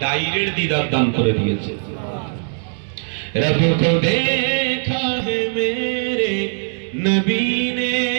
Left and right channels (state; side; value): silent; left; 63 dB below the other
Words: ডাইরেক্ট দিদার দান করে দিয়েছে। रब को देखा है मेरे नबी ने